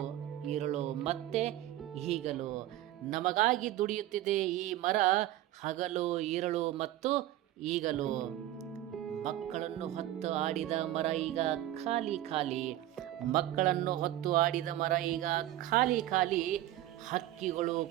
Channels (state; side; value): quieter; left; 14.2 dB